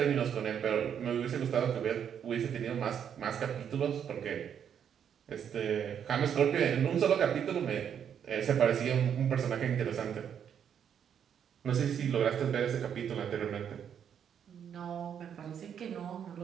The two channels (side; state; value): left; quieter; 8.4 dB